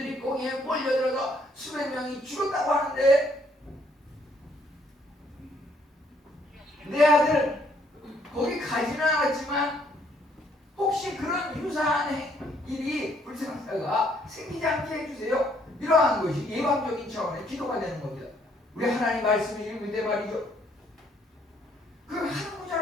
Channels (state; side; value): normal; both; correlation 0.67